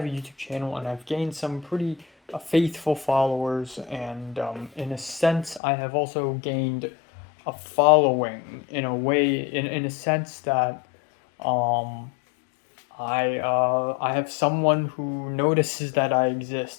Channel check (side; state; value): right; drops out; at 5.6 s